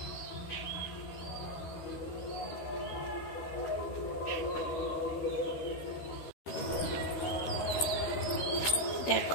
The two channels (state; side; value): late; right; 13 ms